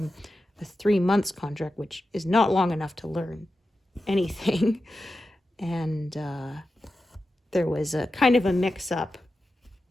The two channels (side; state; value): both; normal; correlation 0.91